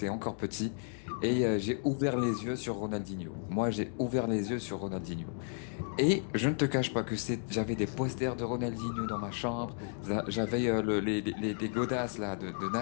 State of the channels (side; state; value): right; silent; 56 dB below the other